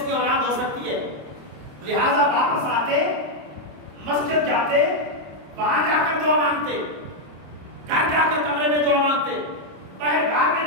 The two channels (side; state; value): left; late; 27 ms